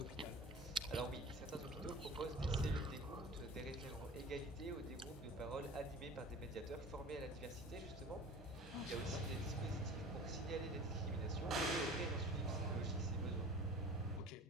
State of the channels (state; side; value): normal; both; correlation 0.40